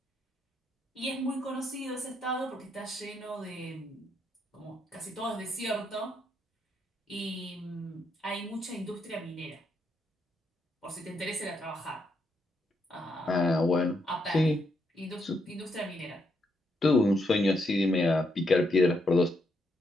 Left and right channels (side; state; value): both; normal; correlation 0.78